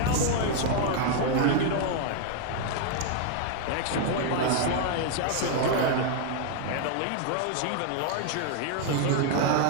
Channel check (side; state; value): both; different; correlation 0.00